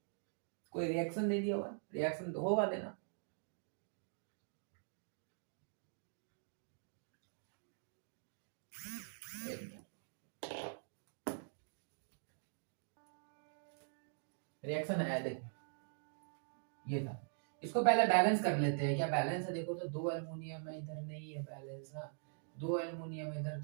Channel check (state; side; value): silent; left; digital silence